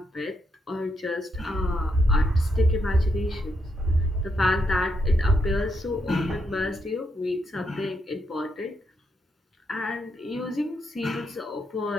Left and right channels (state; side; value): normal; both; correlation 0.79